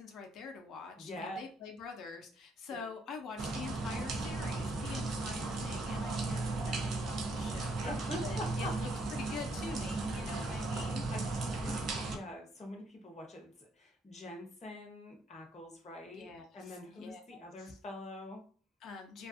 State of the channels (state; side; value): normal; both; correlation 0.71